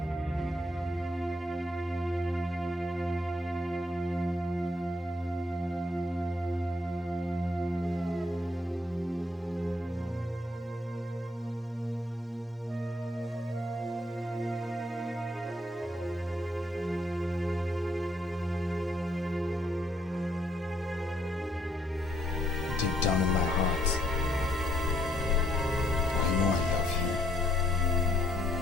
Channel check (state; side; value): normal; both; correlation 0.70